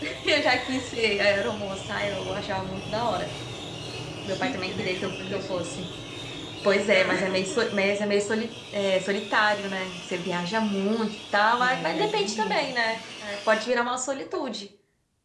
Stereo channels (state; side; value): identical; both; correlation 1.00